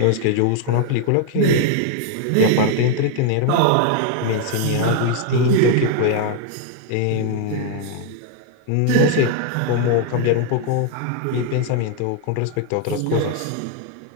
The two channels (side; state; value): both; different; correlation 0.00